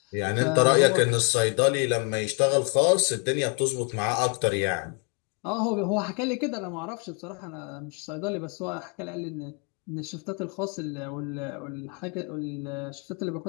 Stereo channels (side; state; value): right; quieter; 35.9 dB